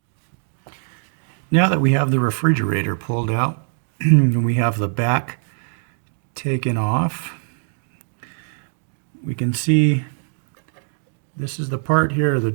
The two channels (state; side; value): silent; left; digital silence